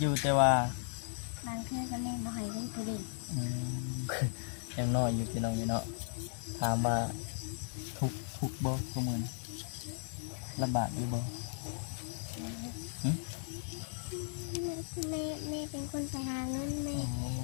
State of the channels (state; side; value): silent; right; 54 dB below the other